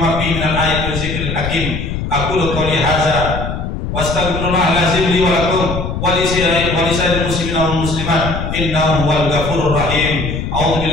fihi minal ayati wa dzikril hakim. Aku qouli hadza wastaghfirullah lazim li wa lakum wa li sa'iril muslimin wal muslimat innahu huwal ghafurur rahim. A'udzu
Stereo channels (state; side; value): noise; left; rumble, 5 dB below the sound